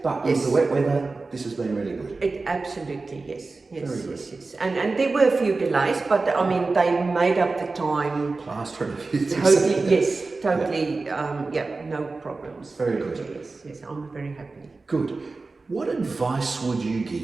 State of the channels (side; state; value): left; quieter; 3.7 dB